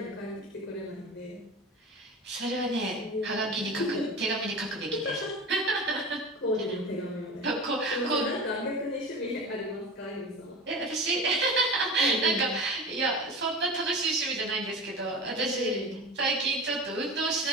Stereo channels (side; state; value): both; normal; correlation 0.31